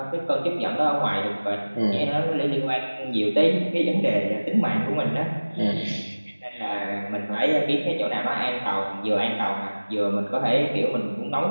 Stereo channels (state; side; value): inverted; both; correlation -1.00